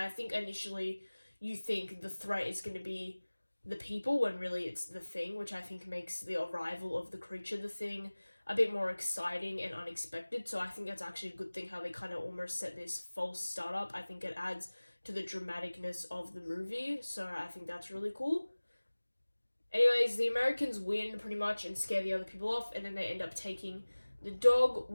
think initially you think the threat is going to be the people when really it's the Thing, which I think makes the arrival of the creature, the Thing, a bit more exciting and unexpected. So I think that's actually a good thing how they kind of almost set this false startup. I think it adds to the dramaticness of the movie, so I think that's really cool. Anyways, the Americans win pretty much and scare the other people off, and then they end up taking the dog.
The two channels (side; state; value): both; inverted; correlation -1.00